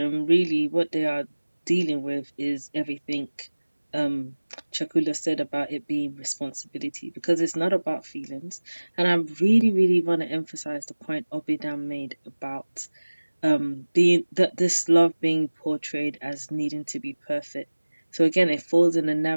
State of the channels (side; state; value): both; inverted; correlation -1.00